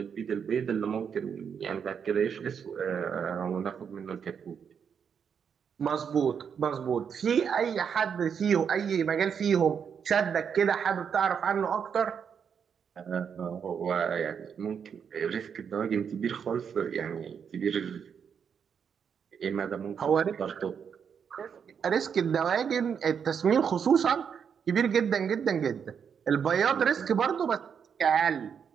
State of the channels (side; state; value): left; quieter; 7.2 dB